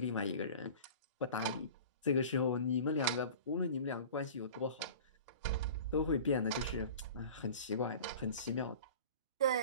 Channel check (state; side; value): inverted; both; correlation -0.40